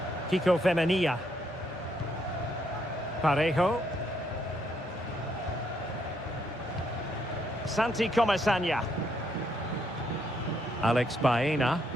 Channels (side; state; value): both; normal; correlation 0.74